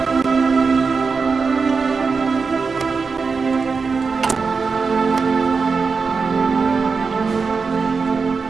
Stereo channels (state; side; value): quieter; left; 4.9 dB